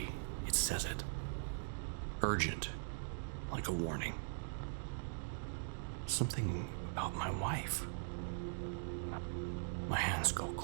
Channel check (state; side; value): silent; left; digital silence